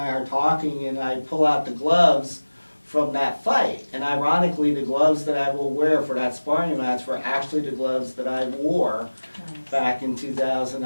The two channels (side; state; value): both; inverted; correlation -1.00